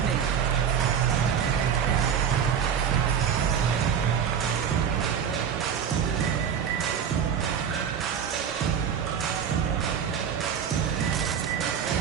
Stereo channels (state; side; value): quieter; left; 7.8 dB